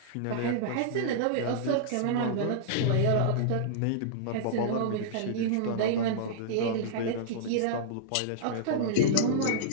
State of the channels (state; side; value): different; both; correlation -0.02